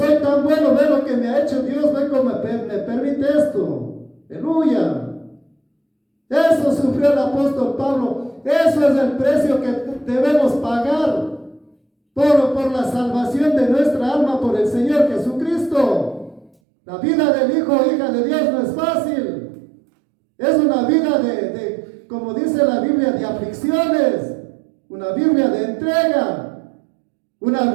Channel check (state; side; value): drops out; left; at 16.5 s